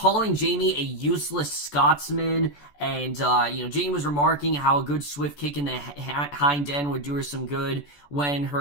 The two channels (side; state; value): right; late; 14 ms